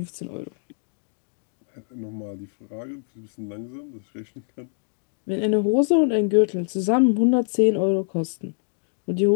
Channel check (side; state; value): right; silent; digital silence